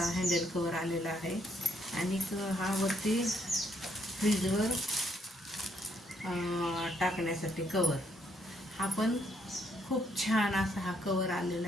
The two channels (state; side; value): normal; both; correlation 0.72